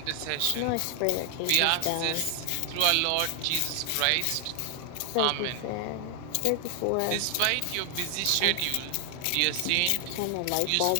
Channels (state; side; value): different; both; correlation 0.00